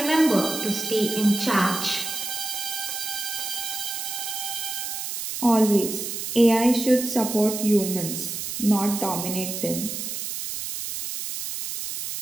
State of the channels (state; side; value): noise; right; hiss, 5 dB below the sound